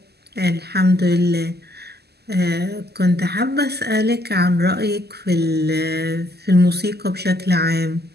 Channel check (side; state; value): left; late; 0.47 ms